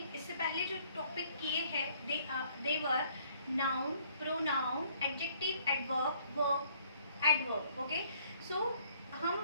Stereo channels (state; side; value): inverted; both; correlation -0.62